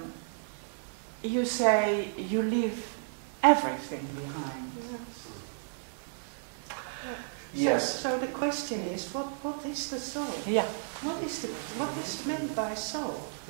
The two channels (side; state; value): left; silent; 56 dB below the other